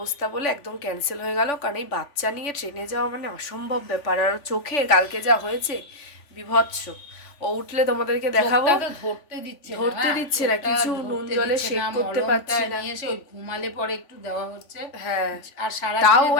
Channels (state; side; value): late; right; 3.5 ms